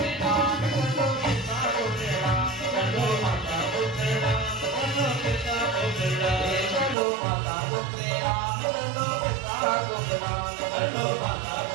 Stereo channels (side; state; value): left; drops out; at 7.0 s